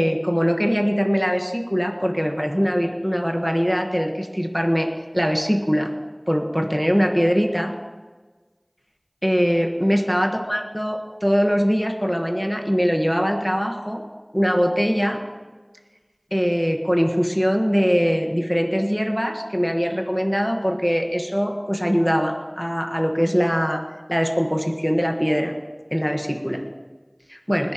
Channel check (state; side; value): identical; both; correlation 1.00